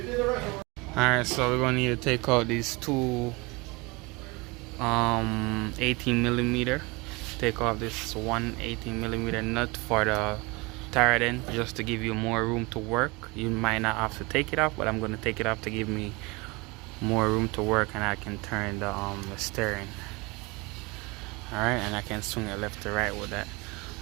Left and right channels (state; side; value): quieter; left; 25.7 dB